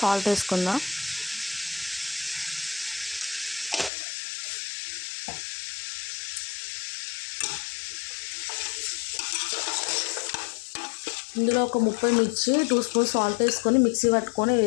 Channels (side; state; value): right; drops out; at 3.9 s